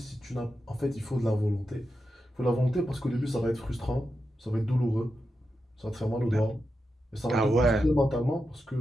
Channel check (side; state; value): both; normal; correlation 0.89